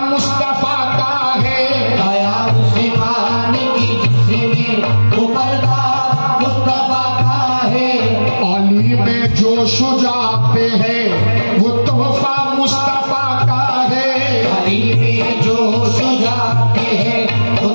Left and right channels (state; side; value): inverted; both; correlation -1.00